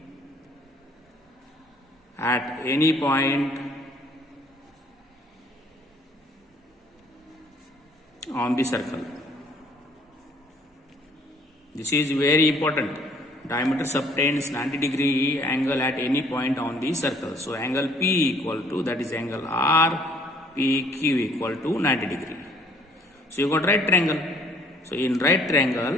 at any point on the circle. This is very important. Diameter subtends 90 degree angle at any point on the circle. So angle P equal to, that is angle R, PQ equal to 90 degree. So you got right triangle. So in right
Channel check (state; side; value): normal; both; correlation 0.59